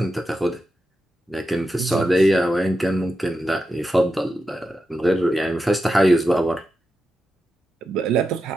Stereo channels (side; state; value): both; normal; correlation 0.88